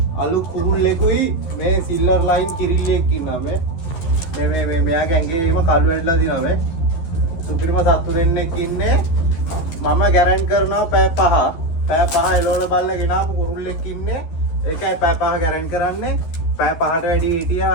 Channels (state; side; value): late; right; 12 ms